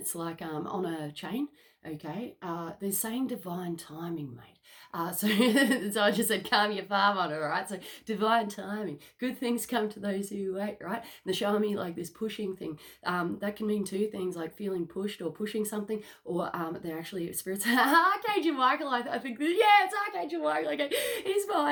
like on a chain, okay? They're saying divine timing, mate. So I just said calm your farm on it, all right? So divine timing. Good things come to those who wait, right? And they're showing me like this pushing thing. That can mean between two things, like feeling pushed or pushing something, or they're actually spirits. Archangel Michael, I think, yeah, it's Archangel Michael. Okay, he's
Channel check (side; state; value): both; identical; correlation 1.00